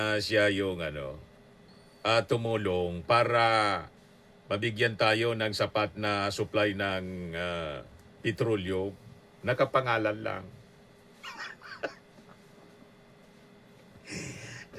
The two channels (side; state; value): both; identical; correlation 1.00